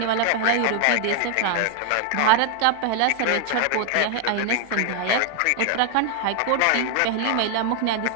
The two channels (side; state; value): both; different; correlation 0.00